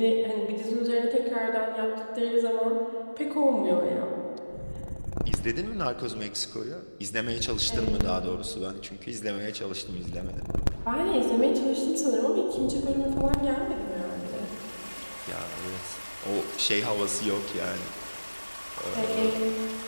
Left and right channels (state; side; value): inverted; both; correlation -1.00